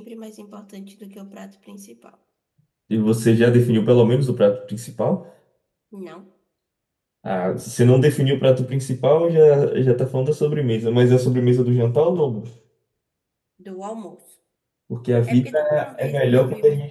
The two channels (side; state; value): both; identical; correlation 1.00